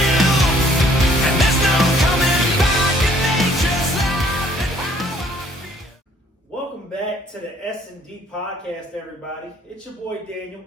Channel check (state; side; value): normal; both; correlation 0.60